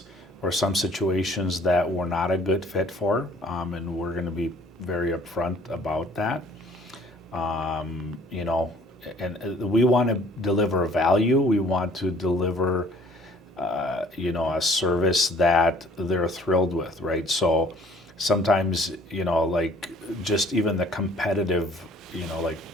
or some situations that we're not a good fit for, and we're going to be very upfront about that. And we want to deliver value. We want to deliver, a service that they're thrilled with, right? So sometimes, like just even the competitive, like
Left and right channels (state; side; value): normal; both; correlation 0.56